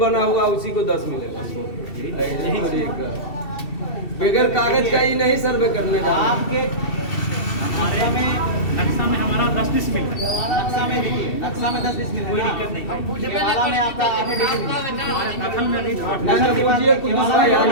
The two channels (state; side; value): late; right; 2.7 ms